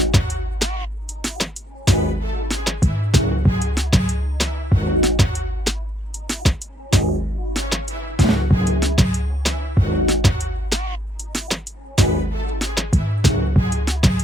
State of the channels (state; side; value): normal; both; correlation 0.75